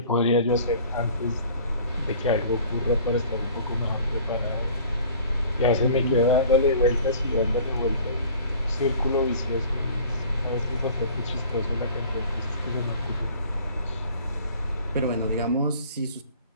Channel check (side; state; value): both; inverted; correlation -0.47